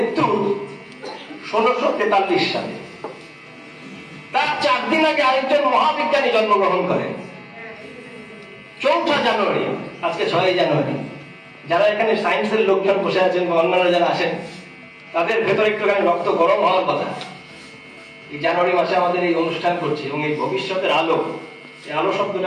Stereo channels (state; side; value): identical; both; correlation 1.00